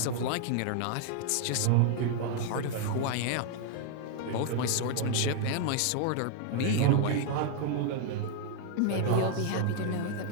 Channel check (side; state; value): both; different; correlation 0.00